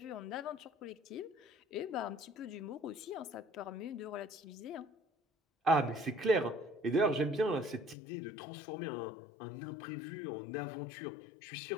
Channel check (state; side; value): drops out; right; at 8.0 s